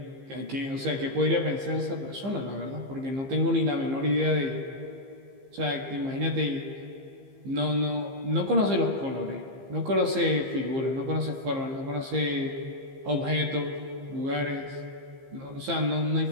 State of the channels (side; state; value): left; late; 15 ms